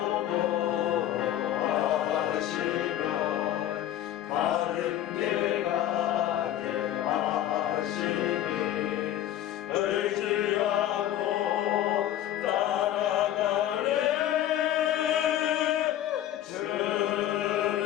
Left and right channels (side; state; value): right; quieter; 12.2 dB